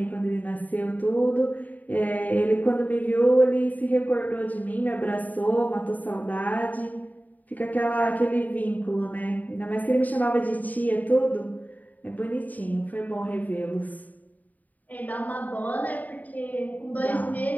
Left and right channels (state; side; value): late; right; 0.078 ms